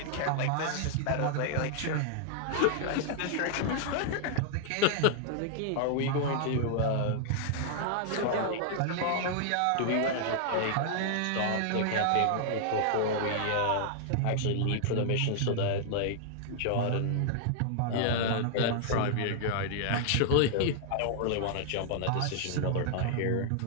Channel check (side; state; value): both; different; correlation -0.01